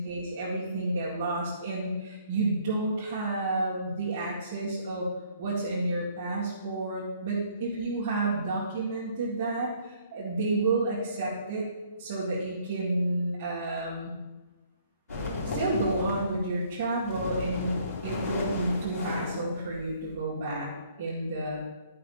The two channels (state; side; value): inverted; both; correlation -0.62